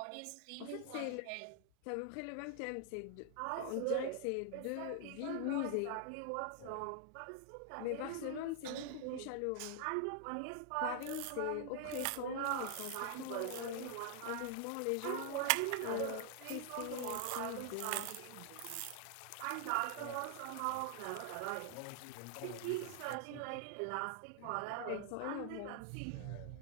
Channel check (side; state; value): both; different; correlation 0.00